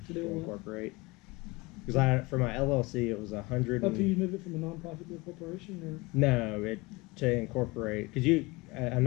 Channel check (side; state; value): right; quieter; 23.7 dB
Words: To do to what? incorporate. Because for my LLC, it was $100. Up to you move it from a nonprofit to a corporation, or No, to incorporate, because a